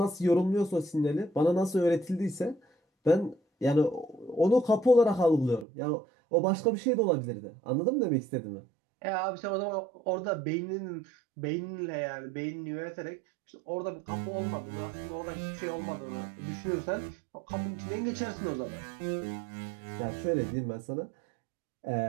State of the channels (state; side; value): drops out; left; at 5.7 s